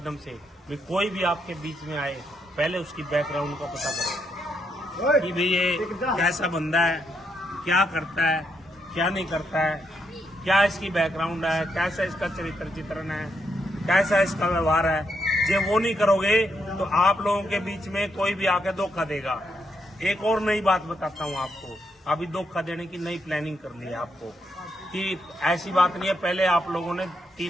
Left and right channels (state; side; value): normal; both; correlation 0.79